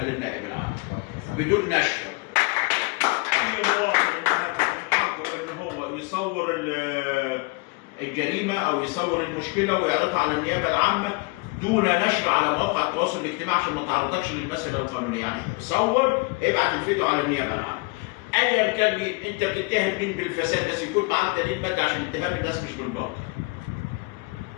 للنائب العام بدون نشر. اي مواطن حقه ان هو يصور الجريمه او يصور المشكله ويعرضها على النيابه العامه دون نشر على مواقع التواصل الاجتماعي عشان ما تعرضكش للمساله القانونيه. يعني صور ابعت الفيديو على النيابه العامه. ايا كان مين انت بتتهم مين بالفساد، بس يكون معاك دليل مادي عشان اتهام الناس مش بالباطل.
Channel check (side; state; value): right; quieter; 27.5 dB